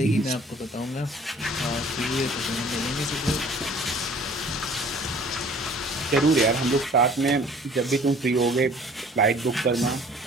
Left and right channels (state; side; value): normal; both; correlation 0.51